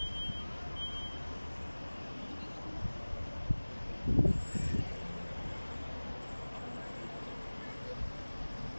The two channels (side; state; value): both; inverted; correlation -1.00